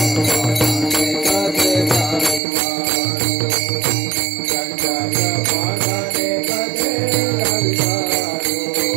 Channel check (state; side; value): drops out; left; at 2.4 s